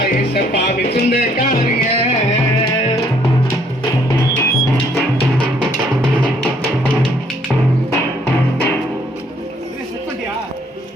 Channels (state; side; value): normal; both; correlation 0.65